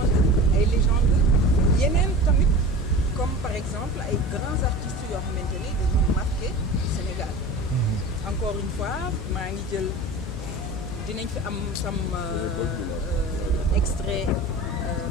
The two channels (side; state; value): both; normal; correlation 0.35